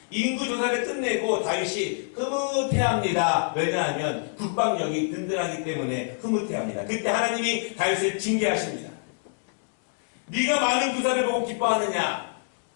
인구조사를 끝내고 다윗이 흐뭇해합니다. 왜냐하면 국방력이 든든하기 때문에 흐뭇해합니다. 그때 하나님이 다윗을 징계하십니다. 네가 많은 군사를 보고 기뻐하느냐?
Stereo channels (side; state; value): right; silent; 61 dB below the other